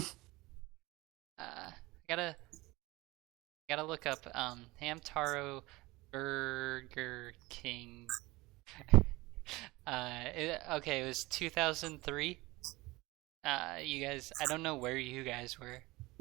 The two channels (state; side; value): quieter; left; 21.2 dB